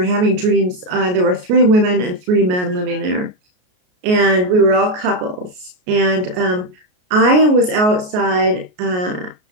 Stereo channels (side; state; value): left; late; 33 ms